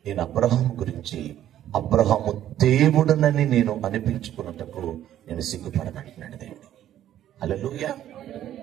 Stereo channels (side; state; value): left; quieter; 11.8 dB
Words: నేను అబ్రహాం గురించి అబ్రహాము దేవుడునని నేను అనిపించుకున్నటకు నేను సిగ్గుపడనంటున్నాడు దేవుడు. హల్లెలూయా,